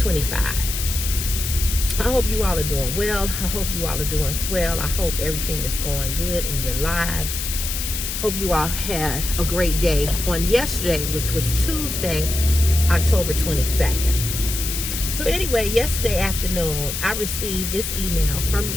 I hope you all are doing well. I hope you all are doing swell. I hope everything is going good in your lives. Hope you all had a great day on yesterday, which was Tuesday, October 22nd. So anyway, yesterday afternoon, I received this email from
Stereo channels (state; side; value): noise; left; hiss, 4 dB below the sound